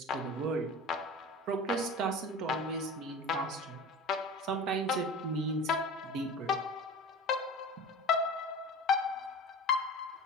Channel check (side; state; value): both; normal; correlation 0.35